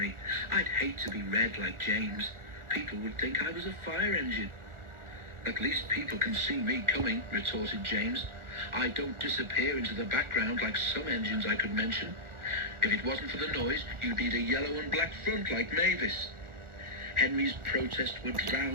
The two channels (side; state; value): left; late; 1.4 ms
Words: I'd hate to be red like James. People would think I was a fire engine. At least people can see me coming, retorted James. I don't disappear into the background like some engines I could mention. If it wasn't for the noise, you'd need a yellow and black front like Mavis. Henry's protest was